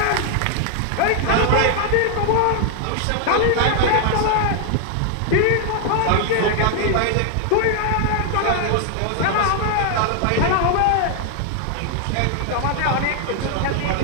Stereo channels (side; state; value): both; different; correlation 0.00